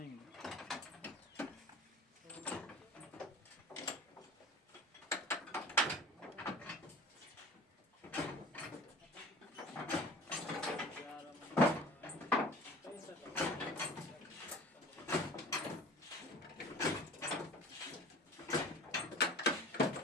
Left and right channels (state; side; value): normal; both; correlation 0.41